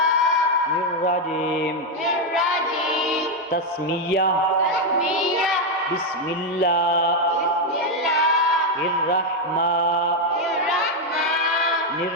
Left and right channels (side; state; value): both; normal; correlation 0.03